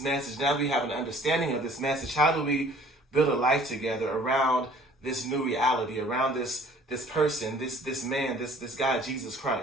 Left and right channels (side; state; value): both; normal; correlation 0.53